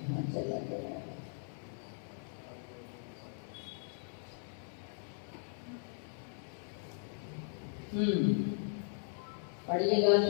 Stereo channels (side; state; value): right; silent; 52 dB below the other